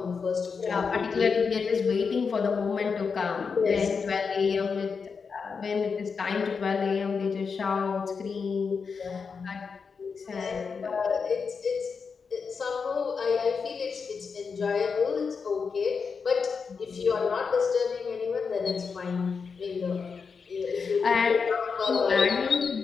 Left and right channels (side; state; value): right; quieter; 5.5 dB